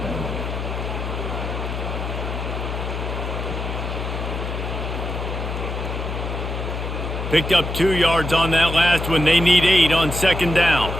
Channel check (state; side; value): noise; left; hum, 4 dB below the sound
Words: Picked up 2 yards on that last one. They need 8 on second down.